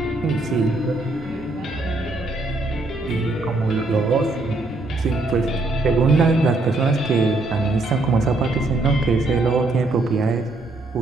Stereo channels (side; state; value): left; quieter; 3.0 dB